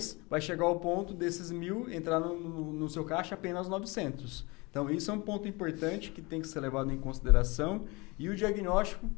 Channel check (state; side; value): quieter; right; 25.7 dB